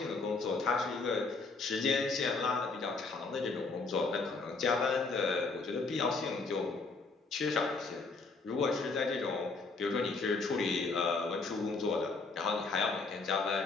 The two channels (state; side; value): quieter; right; 4.0 dB